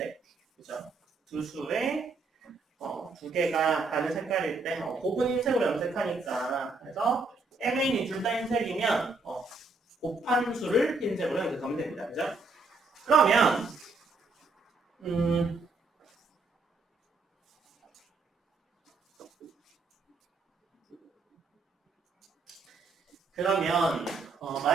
그죠? 두 수의 두 개가 다른 색깔일 때 곱은 흰색으로 염색하니까 그래서 mn이 둘 다 흰색이면 곱한 수를 흰색으로 염색하면 됩니다. 그죠? 그러면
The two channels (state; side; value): quieter; left; 3.7 dB